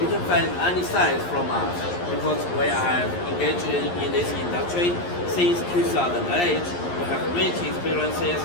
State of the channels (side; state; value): right; late; 11 ms